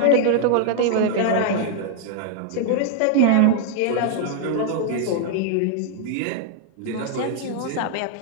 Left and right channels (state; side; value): different; both; correlation 0.00